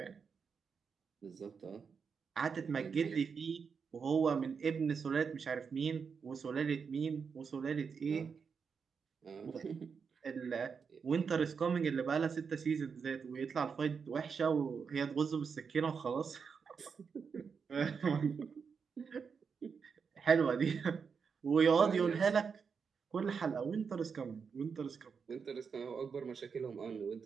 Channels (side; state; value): left; quieter; 5.9 dB